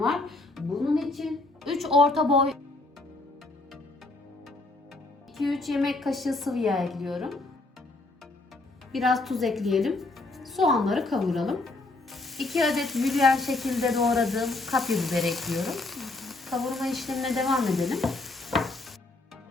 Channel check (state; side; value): quieter; right; 3.0 dB